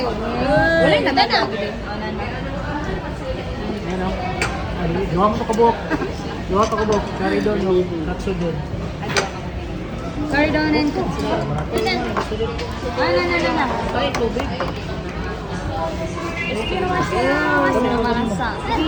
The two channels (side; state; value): both; identical; correlation 1.00